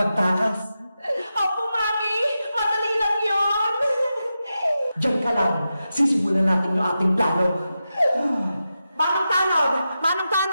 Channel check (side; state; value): both; inverted; correlation -0.90